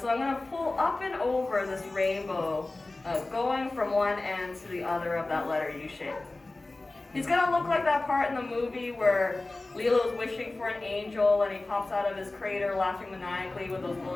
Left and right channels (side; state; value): right; quieter; 3.0 dB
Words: So I'm going to pull up and over this rainbow, going from one end to the other of that letter U shape. He's going to look like that part in the movie where Lilo's wishing for an angel and he pops out of his crater laughing maniacally with those